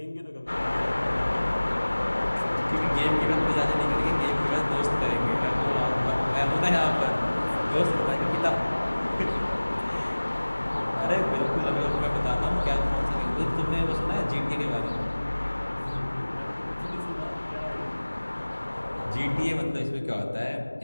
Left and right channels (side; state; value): both; inverted; correlation -1.00